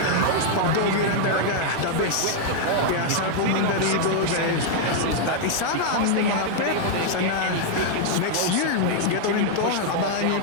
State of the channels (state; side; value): different; both; correlation 0.00